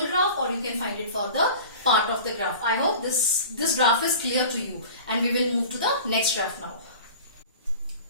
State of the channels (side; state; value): both; inverted; correlation -0.39